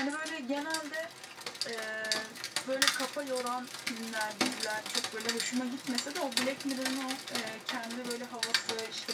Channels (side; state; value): both; identical; correlation 1.00